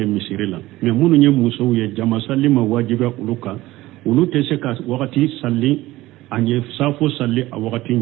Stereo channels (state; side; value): quieter; left; 17.4 dB